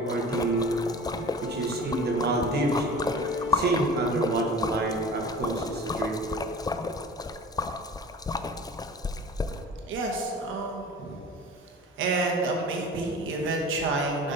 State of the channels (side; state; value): both; normal; correlation 0.40